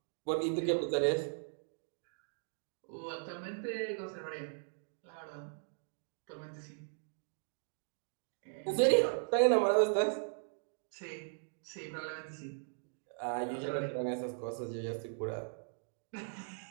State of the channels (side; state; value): left; silent; digital silence